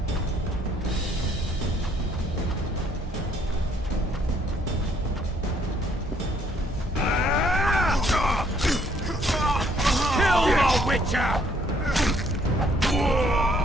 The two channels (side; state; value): both; normal; correlation 0.66